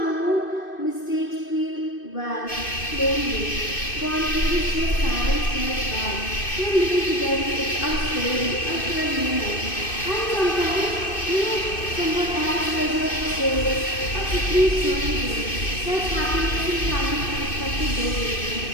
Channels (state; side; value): late; right; 2.6 ms